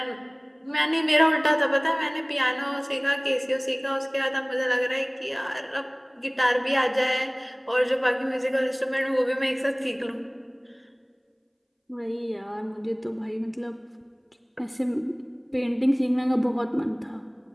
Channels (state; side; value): identical; both; correlation 1.00